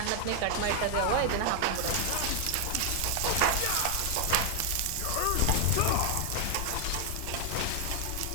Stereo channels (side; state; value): both; different; correlation 0.00